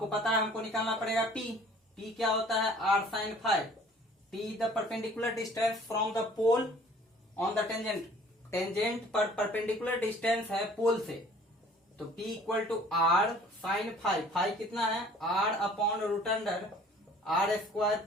पता है हमको निकालना पड़ेगा पी। पी क्या होता है, R sine phi. P the perpendicular distance from the pole on the tangent. Tangent पर परपेंडिकुलर डिस्टेंस है पोल से, तो P equal to R sine phi. Phi कितना है, R upon root under R square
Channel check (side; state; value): both; normal; correlation 0.52